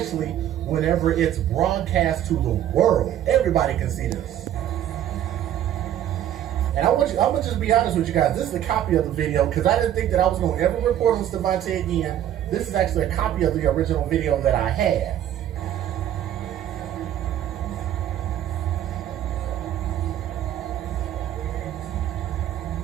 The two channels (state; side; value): quieter; left; 11.3 dB